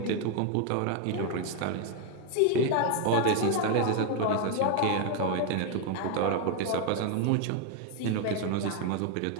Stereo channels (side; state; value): both; different; correlation 0.01